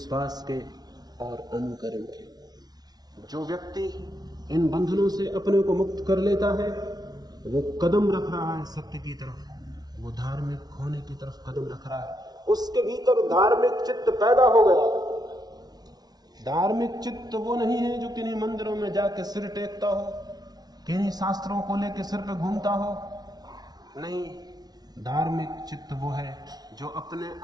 के और अनुकरण के। जो व्यक्ति इन बंधनों से अपने को मुक्त कर लेता है वो कदम रख रहा है सत्य की तरफ, वो धार्मिक होने की तरफ कदम रख रहा है। उसके भीतर धार्मिक चित्त पैदा हो गया। धार्मिक चित्त वो नहीं है जो किन्हीं मंदिरों में जाके सिर टेकता हो, किन्हीं शास्त्रों को लेकर सिर पे घूमता हो। नहीं, धार्मिक चित्त वो है जो अपने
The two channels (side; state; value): left; late; 0.19 ms